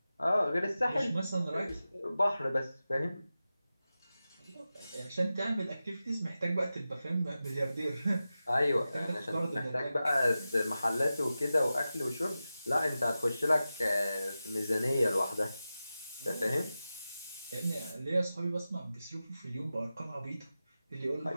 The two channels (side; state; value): both; inverted; correlation -0.93